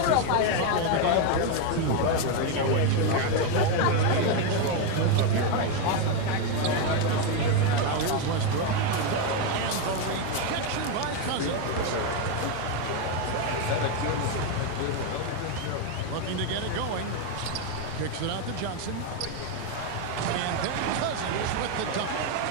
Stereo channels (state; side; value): different; both; correlation 0.02